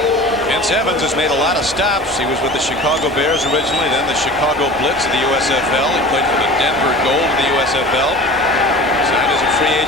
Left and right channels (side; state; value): both; normal; correlation 0.38